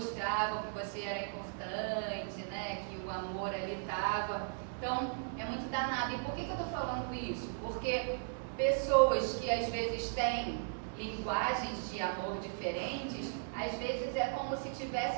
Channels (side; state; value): left; silent; 53 dB below the other